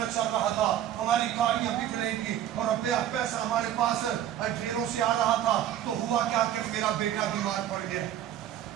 چل رہا تھا, ہماری گاڑیاں بک رہی تھی اور پیسہ ہمارے پاس ڈھیروں سے آ رہا تھا. تو ہوا کیا کہ میرا بیٹا بیمار پڑ گیا,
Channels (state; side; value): quieter; left; 11.2 dB